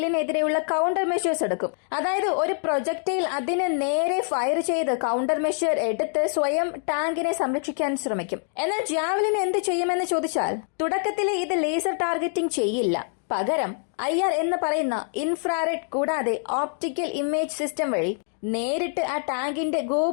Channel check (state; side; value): silent; right; 62 dB below the other